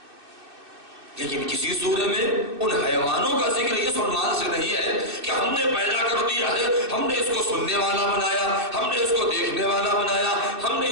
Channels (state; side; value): late; left; 2.6 ms